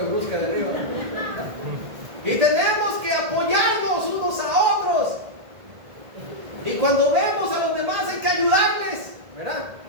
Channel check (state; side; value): late; left; 1.8 ms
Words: brusca de arriba. Y tenemos que apoyarnos unos a otros. Y cuando vemos a los demás hay que ayudarles, ¿verdad?